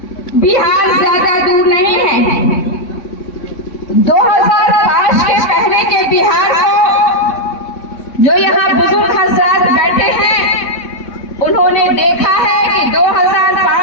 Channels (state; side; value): late; right; 3.6 ms